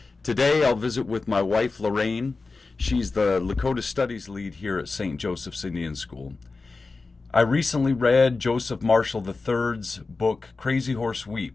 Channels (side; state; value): right; quieter; 3.9 dB